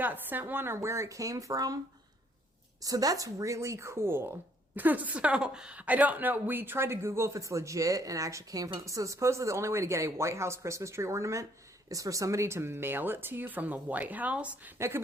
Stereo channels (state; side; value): normal; both; correlation 0.65